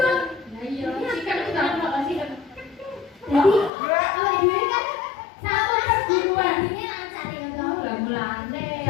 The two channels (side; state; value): right; drops out; at 3.7 s